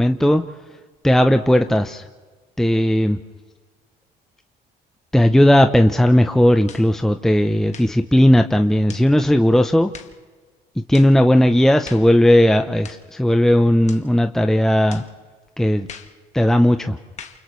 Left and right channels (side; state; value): both; normal; correlation 0.98